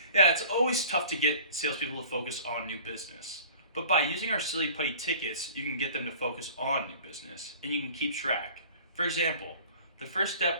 yeah, it's always tough to get salespeople to focus on new business. But by using our Silly Putty tickets, you can get them to focus on new business and you can keep track. For example, the first step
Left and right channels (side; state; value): both; inverted; correlation -0.45